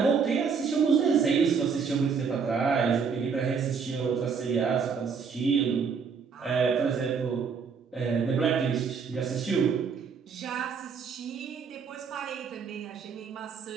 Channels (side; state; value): left; quieter; 5.9 dB